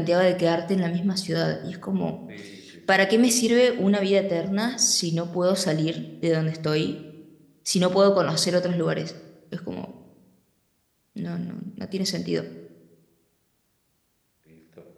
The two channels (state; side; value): identical; both; correlation 1.00